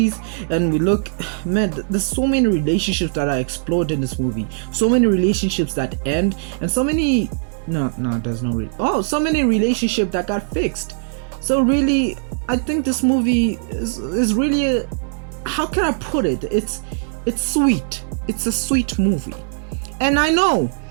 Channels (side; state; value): left; silent; digital silence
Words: And we look, man, there's so many relationships that are explored in this movie. So many relationships that end, and so many so many relationships that got fixed. So really, I think this movie is really how can I put it? It's sweet. It's a sweet movie. And I know